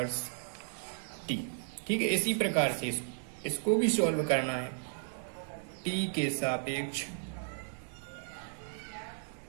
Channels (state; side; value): silent; left; digital silence